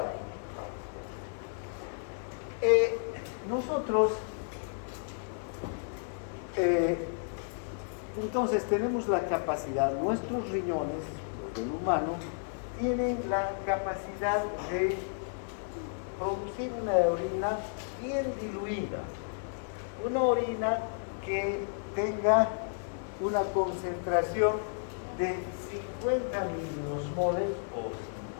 nosotros entonces tenemos la capacidad, nuestros riñones, el humano, tienen la capacidad de producir una orina bien diluida, una orina que tenga una concentración de 50 miliosmoles o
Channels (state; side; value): silent; right; digital silence